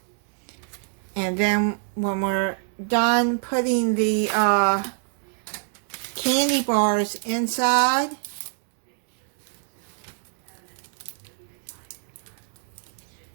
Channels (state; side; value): silent; left; 61 dB below the other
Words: And then when we're done putting the candy bars inside,